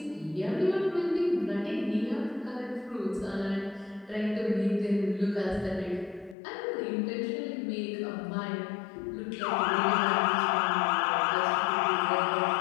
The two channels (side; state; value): right; drops out; at 6.4 s